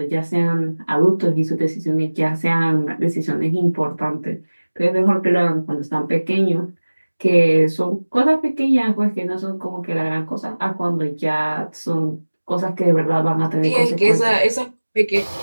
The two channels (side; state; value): both; inverted; correlation -1.00